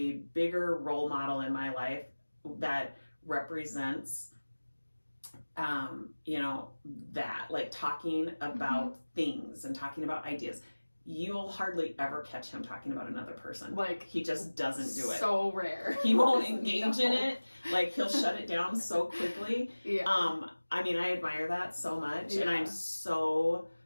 bigger role model in my life that represents, that, like talking about things and talking about ideas. You'll hardly ever catch him talking about another person. Like, he just doesn't do it. So rare. He won't engage in it. Like, he'll shut it down so quickly. I mean, I admire that so much. And I'm so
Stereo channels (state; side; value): inverted; both; correlation -1.00